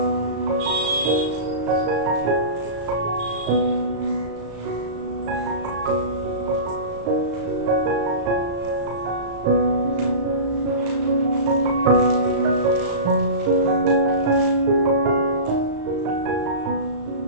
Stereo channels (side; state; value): left; late; 35 ms